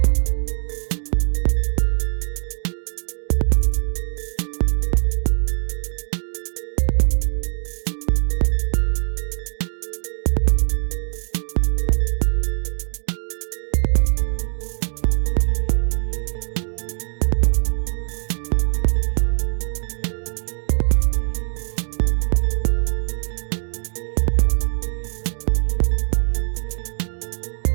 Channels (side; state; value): left; silent; digital silence